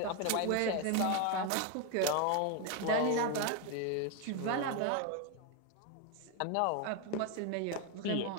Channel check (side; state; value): both; different; correlation 0.01